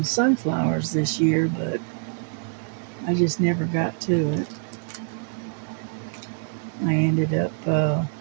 sunflowers this year, but I just never got to it. I ended up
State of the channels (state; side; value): silent; left; digital silence